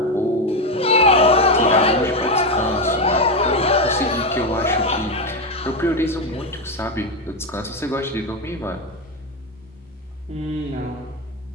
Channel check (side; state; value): both; normal; correlation 0.10